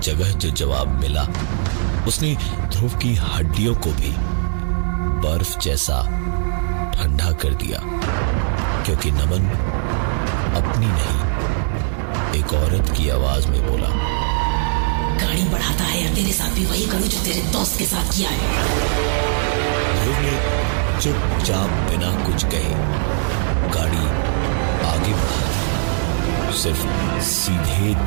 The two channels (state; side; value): silent; left; 55 dB below the other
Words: जगह जो जवाब मिला उसने ध्रुव की हड्डियों को भी बर्फ जैसा ठंडा कर दिया, क्योंकि नमन अपनी नहीं एक औरत की आवाज में बोला, गाड़ी बढ़ाता है या तेरे साथ भी वही करूं जो तेरे दोस्त के साथ किया है। ध्रुव ने चुपचाप बिना कुछ कहे गाड़ी आगे बढ़ा दी। सिर्फ सीधे